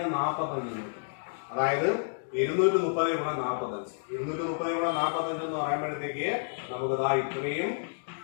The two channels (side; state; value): right; silent; digital silence